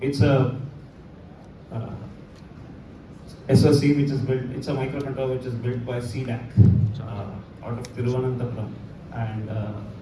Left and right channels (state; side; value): identical; both; correlation 1.00